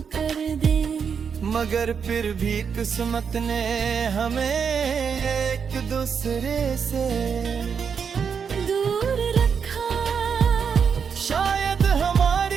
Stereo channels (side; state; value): left; quieter; 6.6 dB